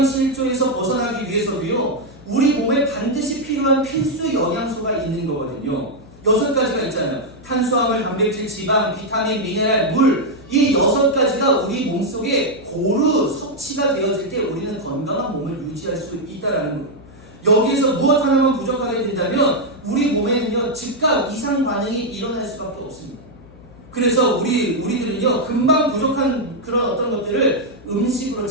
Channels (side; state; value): left; noise; hum, 22 dB below the sound